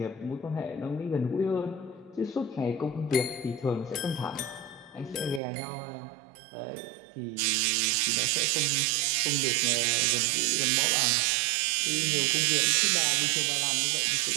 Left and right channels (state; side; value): drops out; left; at 5.4 s